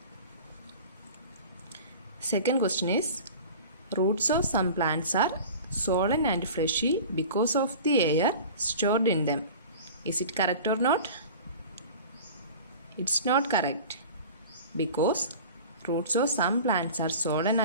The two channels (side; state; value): both; inverted; correlation -0.38